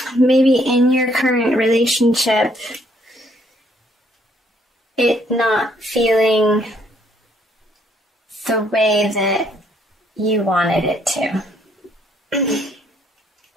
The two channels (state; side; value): normal; both; correlation 0.67